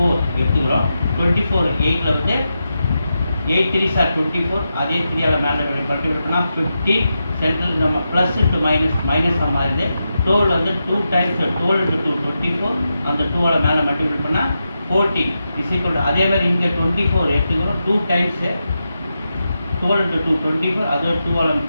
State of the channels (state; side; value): inverted; both; correlation -0.88